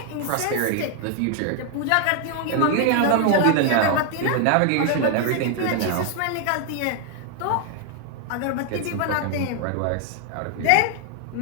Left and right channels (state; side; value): different; both; correlation 0.00